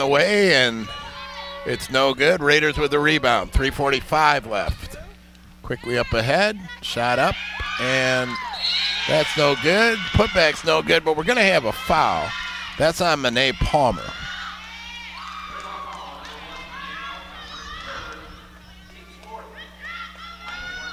way, and it's no good. Raiders with the rebound. 3:45 left. Quickly up ahead, shot up, and that's no good. Putback's no good, but we're going to have a foul. That's on Monet Palmer.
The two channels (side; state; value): both; identical; correlation 1.00